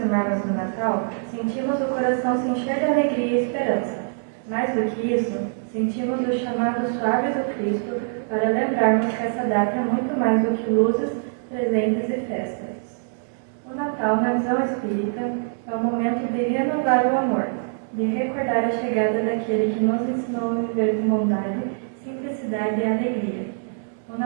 do Natal, sentimos o coração se encher de alegria e esperança. Mais do que isso, sentimos o chamado suave do Cristo para lembrarmos que essa data é muito mais do que luzes, presentes e festas. O Natal, na visão espírita, é o momento de renovar o amor, de recordar a chegada daquele que nos ensinou a viver com bondade, simplicidade e alegria. O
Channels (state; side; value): silent; left; digital silence